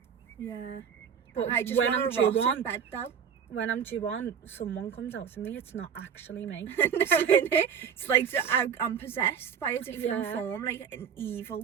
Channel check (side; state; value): left; quieter; 7.5 dB